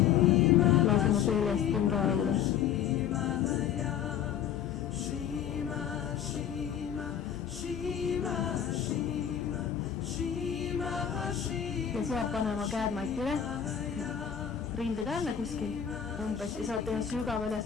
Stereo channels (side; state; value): right; quieter; 9.1 dB